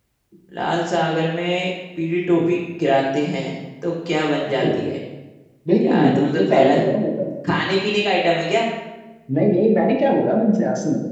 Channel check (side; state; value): both; identical; correlation 1.00